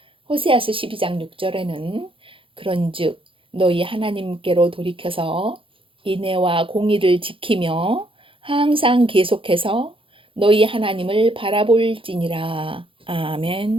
호세아서 12장 6절에는 그런즉 너희 하나님께로 돌이켜서 인애와 공의를 지키며 항상 계속해서 너희 하나님을 바라볼지니라.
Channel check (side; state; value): left; late; 0.25 ms